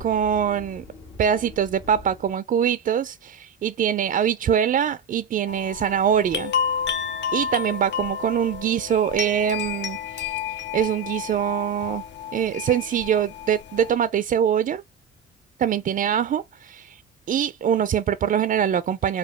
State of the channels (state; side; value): quieter; left; 6.5 dB